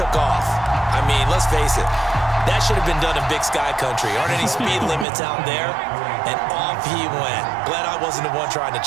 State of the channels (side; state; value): left; drops out; at 5.1 s